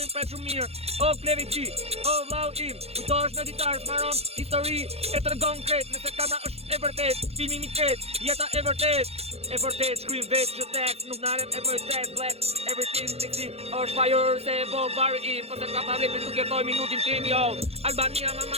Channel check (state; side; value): late; left; 0.29 ms